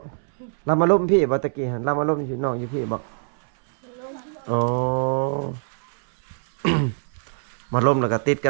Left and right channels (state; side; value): silent; left; 63 dB below the other